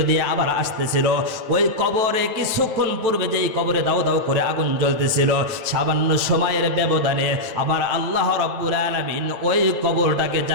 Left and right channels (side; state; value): left; late; 9.1 ms